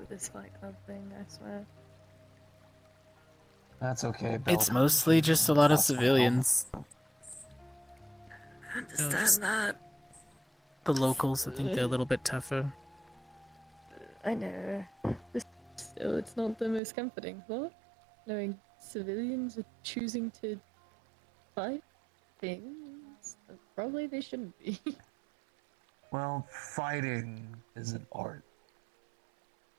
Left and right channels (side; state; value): left; drops out; at 16.8 s